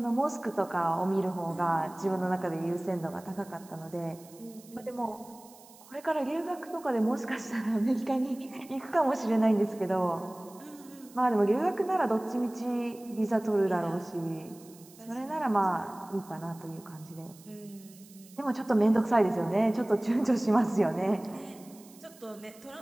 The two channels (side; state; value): right; noise; hiss, 23 dB below the sound